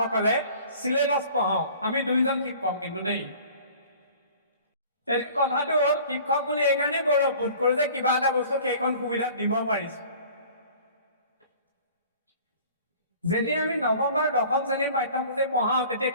চিলেবাছ পঢ়াওঁ, আমি দুইজন শিক্ষক কিন্তু দেই। কথাটো হ'ল শিক্ষক বুলি এইকাৰণে গৌৰৱবোধ কৰোঁ যে কিবা এটা বস্তু সেইখন সুবিধাত দিব পাৰিছো। যেতিয়া আমি নৱম বা দশম শ্ৰেণীৰ পাঠ্যসূচী পঢ়াওঁ তেতিয়া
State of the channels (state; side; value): inverted; both; correlation -0.47